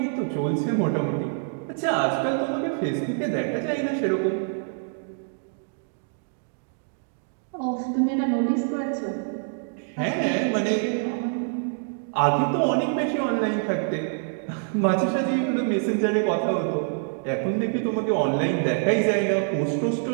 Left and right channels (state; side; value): silent; left; digital silence